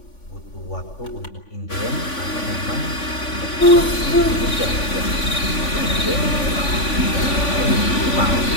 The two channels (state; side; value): late; right; 3.5 ms